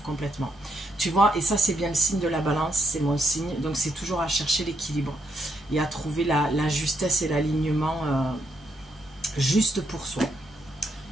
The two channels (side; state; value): both; normal; correlation 0.78